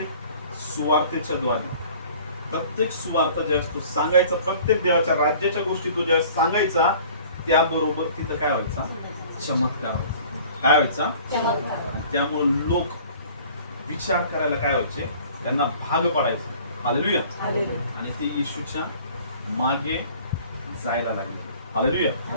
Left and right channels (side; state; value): both; inverted; correlation -0.49